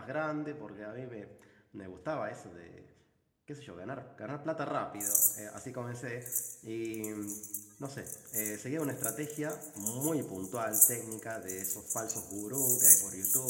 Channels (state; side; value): identical; both; correlation 1.00